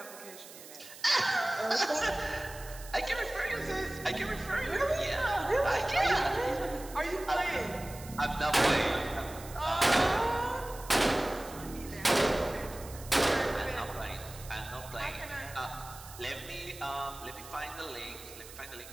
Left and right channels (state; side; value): noise; right; hiss, 16 dB below the sound